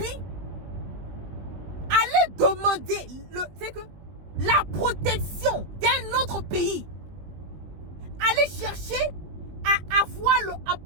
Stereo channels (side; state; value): left; late; 20 ms